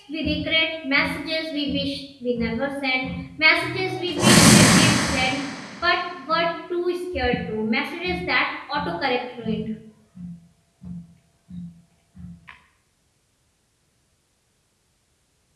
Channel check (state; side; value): identical; both; correlation 1.00